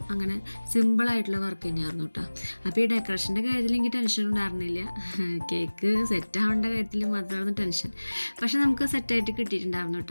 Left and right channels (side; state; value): both; inverted; correlation -1.00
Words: അങ്ങനെ സിമ്പിളായിട്ടുള്ള വർക്ക് തന്നെയായിരുന്നു കേട്ടോ. അപ്പോൾ ഈ ഡെക്കറേഷൻ്റെ കാര്യത്തിൽ എനിക്ക് ടെൻഷൻ ഉണ്ടായിരുന്നില്ല. കേക്ക് സെറ്റാവേണ്ട കാര്യത്തിൽ മാത്രമായിരുന്നു ടെൻഷൻ. പക്ഷെ നമുക്ക് സെറ്റായിട്ട് കിട്ടിയിട്ടുണ്ടായിരുന്നു